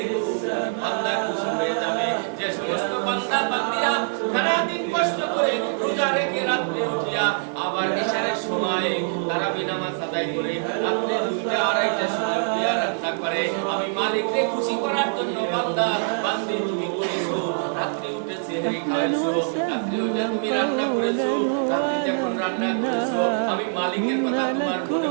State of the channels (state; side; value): silent; left; 63 dB below the other